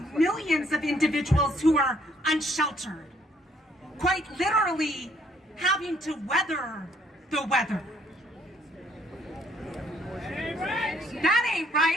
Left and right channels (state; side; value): normal; both; correlation 0.66